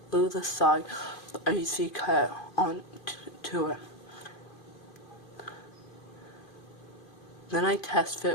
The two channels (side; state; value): right; late; 2.5 ms